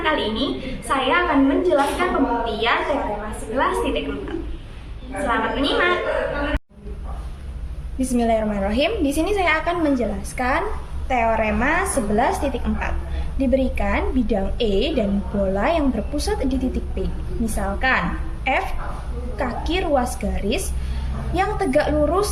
kali ini, saya akan menjelaskan pembuktian teorema 11.4. Selamat menyimak. Bismillahirrahmanirrahim. Di sini saya akan menjelaskan teorema 11.4. Diberikan bidang E dan bola yang berpusat di titik P. Misalkan F kaki ruas garis yang tegak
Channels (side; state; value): both; identical; correlation 1.00